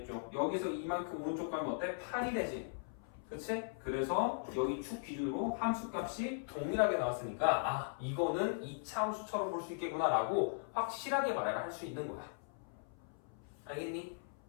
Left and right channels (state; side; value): silent; right; 52 dB below the other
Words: 여기서 2만큼 오른쪽 가면 어때? 8이 되지. 그치? 그래서 여기 축 기준으로 함수값이 동일하게 나왔으니까 이거는 2차 함수처럼 볼 수 있겠구나 라고 확실하게 말할 수 있는 거야. 알겠니?